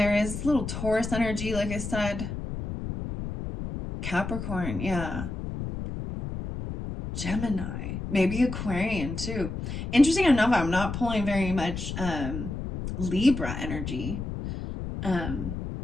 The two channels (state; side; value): noise; left; rumble, 6 dB below the sound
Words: is little Taurus energy, like I said. Capricorn, yeah. Gemini, maybe Aquarian too. Interesting enough, I'm not pulling very much Libra energy